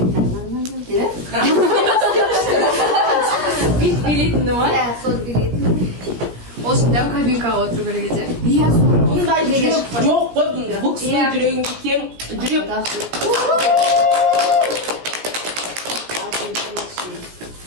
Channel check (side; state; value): left; late; 17 ms